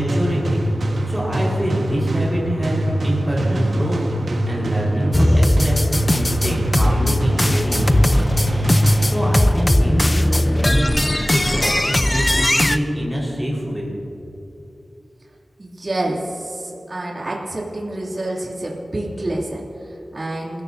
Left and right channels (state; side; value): normal; both; correlation 0.97